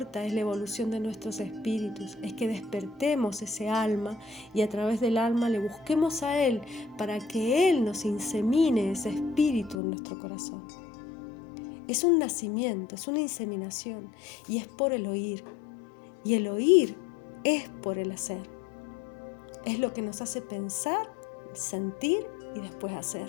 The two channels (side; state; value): right; drops out; at 9.8 s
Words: es la evolución de nuestros espíritus, es que despertemos ese alma y a través del alma le busquemos a Él para que Él nos insemine ese espíritu en nuestro corazón. Es un nacimiento, es una inseminación y es por el oír. Y el oír es por el hacer. Es lo que nos hace pensar, sentir y después